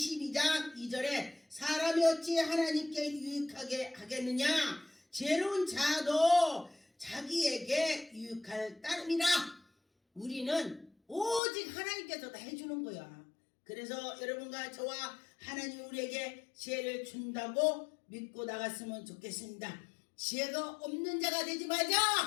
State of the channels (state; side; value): drops out; right; at 11.4 s